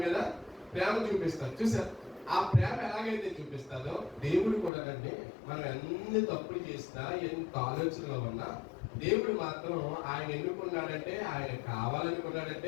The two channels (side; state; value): right; drops out; at 4.7 s